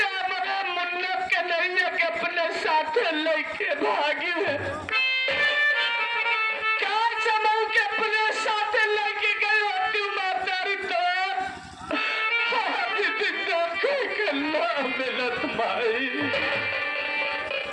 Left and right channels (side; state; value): both; identical; correlation 1.00